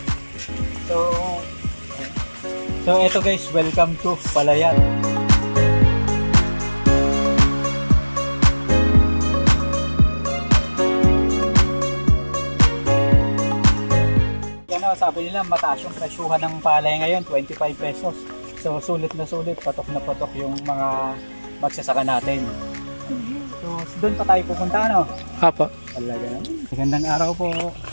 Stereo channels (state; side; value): inverted; both; correlation -1.00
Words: So eto guys, welcome to Palayan. Sabi nila mataas yung presyuhan ng palay ngayon, 25 pesos. So sulit na sulit, patok na patok yung mga magsasaka natin. So doon pa tayo pupunta, ano? Apo. Talaga naman. Magandang araw po.